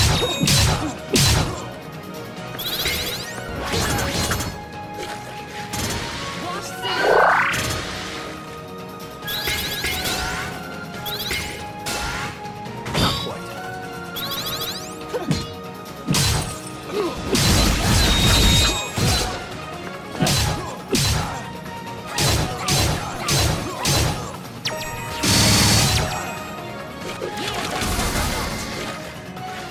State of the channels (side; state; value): both; identical; correlation 1.00